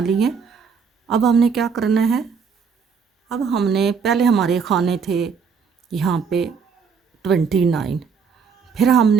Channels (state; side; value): quieter; left; 5.9 dB